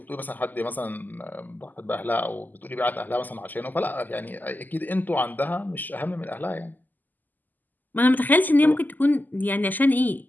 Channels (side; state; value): right; late; 0.085 ms